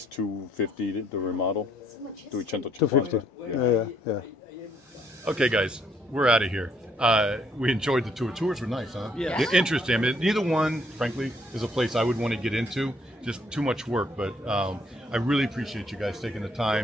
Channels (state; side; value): normal; both; correlation 0.68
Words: 250 to remodel. 250. Yeah. Okay, guys, we're out of here. We enjoyed the tour. Tours were nice, huh? Yeah. They're interesting. I mean, neither one, frankly, is a place I would want to get into. Just too much work. But I really appreciate you guys taking the